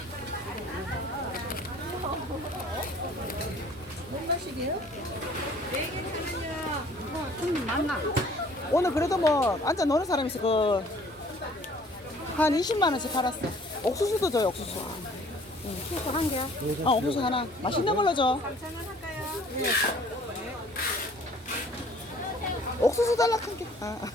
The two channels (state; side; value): normal; both; correlation 0.55